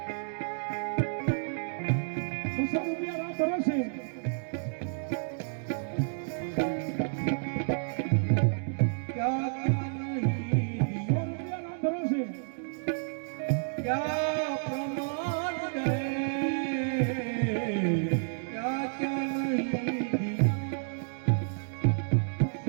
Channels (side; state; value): left; silent; digital silence